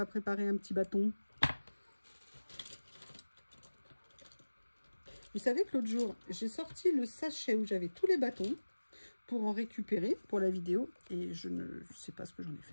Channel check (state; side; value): inverted; both; correlation -1.00